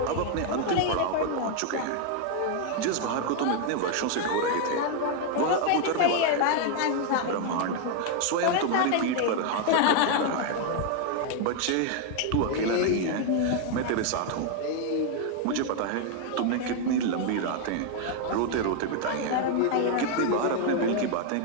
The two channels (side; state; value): both; different; correlation 0.00